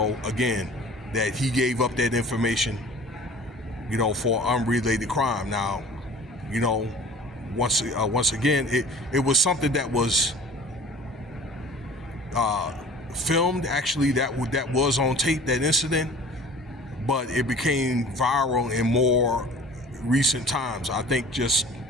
again, that he gave up that information, you know, for unrelated crime. Now, you know, once again, it was something that was filmed. Actually, that was on tape, that incident. But it became viral in more recent times. I think just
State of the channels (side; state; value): both; normal; correlation 0.45